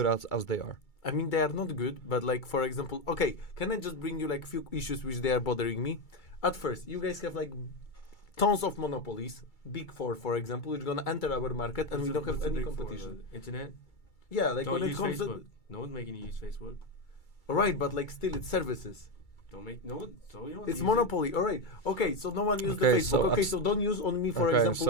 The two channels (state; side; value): late; right; 2.3 ms